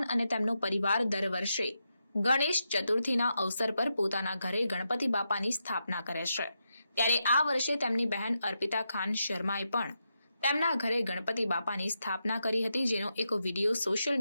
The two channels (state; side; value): inverted; both; correlation -0.85